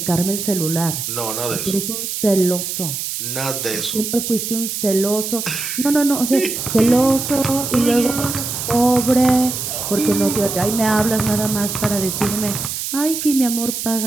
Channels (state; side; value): noise; right; hiss, 4 dB below the sound